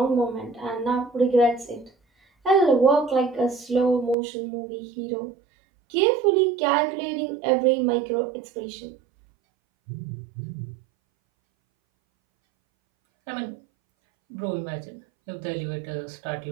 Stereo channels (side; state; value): left; drops out; at 4.2 s